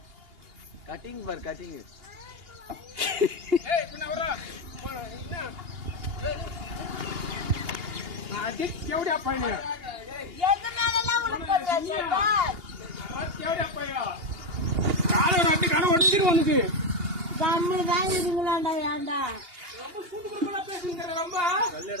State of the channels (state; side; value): late; left; 2.8 ms